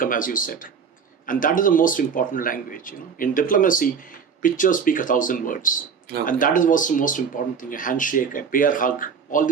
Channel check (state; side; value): quieter; left; 6.3 dB